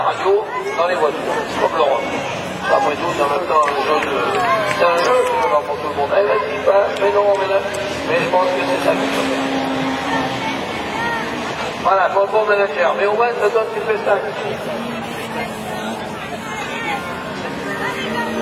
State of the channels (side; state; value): both; identical; correlation 1.00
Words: radio dans les voitures, comme l'Europe. Après tout, en même temps, c'est un jeu qui va pour tout le monde. Eh, vas-y, passe, mais non, mais je pense que c'est ça qu'il faut faire. Voilà, pour le bon manager. Mais au moins, ça donne du spectacle.